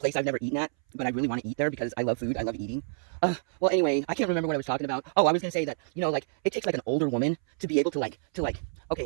I've never eaten at, but I really want to eat there because I love food. I love eating. Well, anyway, I can't remember what I was talking about. Oh, I was going to say that, like, it takes, like, an older woman to be able to, like,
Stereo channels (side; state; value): left; silent; 59 dB below the other